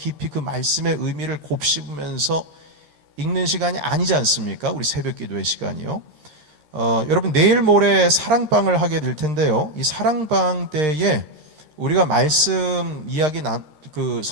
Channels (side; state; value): left; late; 13 ms